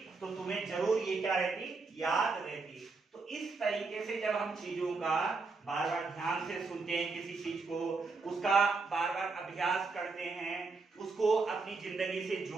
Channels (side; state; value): left; quieter; 4.1 dB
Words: तो तुम्हें जरूर ये क्या रहती, याद रहती। तो इस तरीके से जब हम चीजों का बार बार ध्यान से सुनते हैं, किसी चीज को उसका बार बार अभ्यास करते हैं, उसको अपनी जिंदगी से